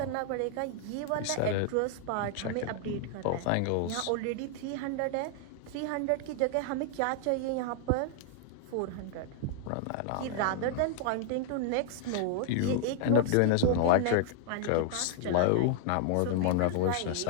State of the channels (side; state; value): both; different; correlation -0.01